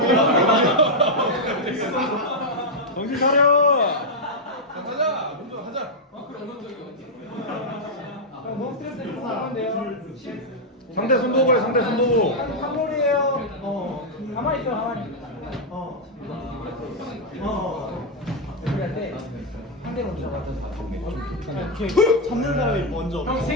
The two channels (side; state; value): both; normal; correlation -0.02